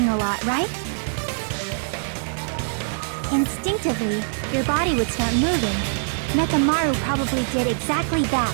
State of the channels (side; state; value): left; silent; 63 dB below the other